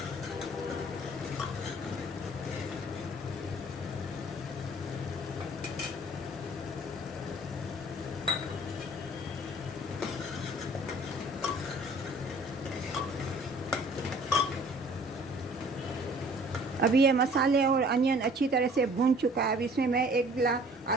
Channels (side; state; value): both; normal; correlation 0.53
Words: अभी ये मसाले और अनियन अच्छी तरह से भून चुका है। अभी इसमें मैं